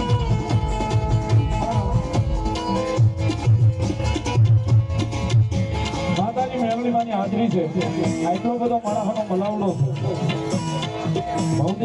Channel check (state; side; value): identical; both; correlation 1.00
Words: માતાજી મેળવીમાંની હાજરી છે આટલો બધો માણસનો મલાવડો છે